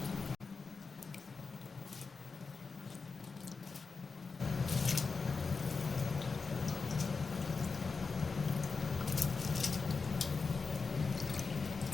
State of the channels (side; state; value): right; quieter; 4.6 dB